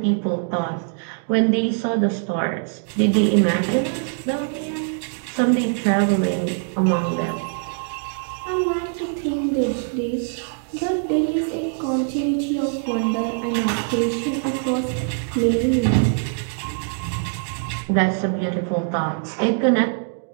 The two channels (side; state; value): left; silent; 61 dB below the other